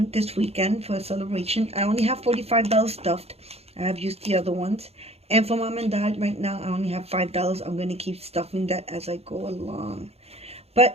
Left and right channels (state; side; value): late; left; 0.30 ms